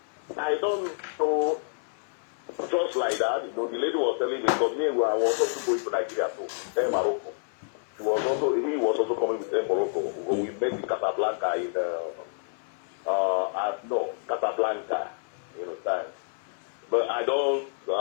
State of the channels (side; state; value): right; silent; digital silence